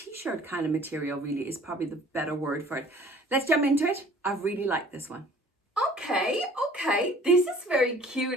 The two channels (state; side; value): normal; both; correlation 0.51